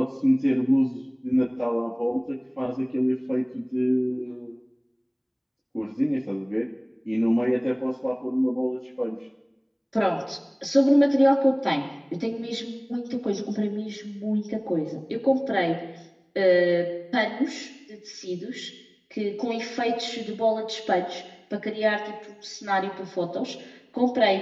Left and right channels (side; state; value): both; identical; correlation 1.00